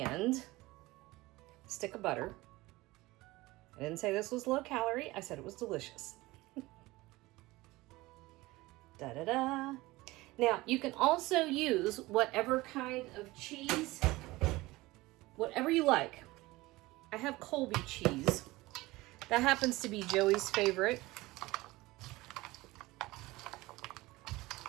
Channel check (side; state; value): left; quieter; 20.1 dB